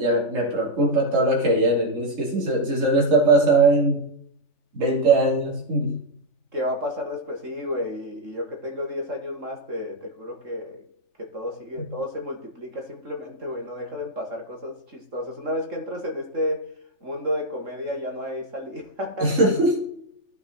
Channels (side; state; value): left; late; 3.4 ms